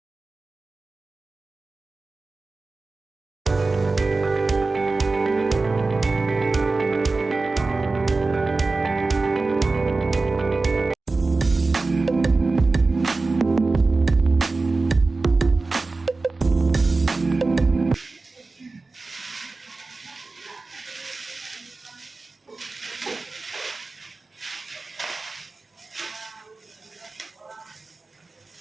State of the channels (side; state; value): left; quieter; 3.6 dB